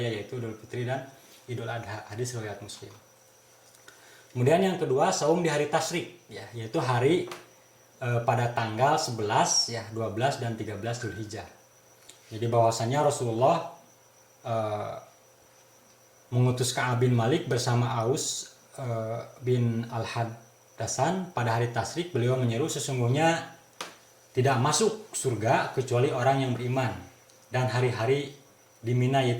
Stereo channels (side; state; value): both; identical; correlation 1.00